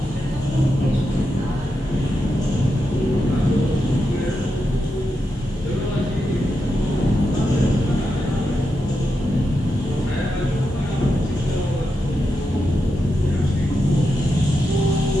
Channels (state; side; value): normal; both; correlation 0.86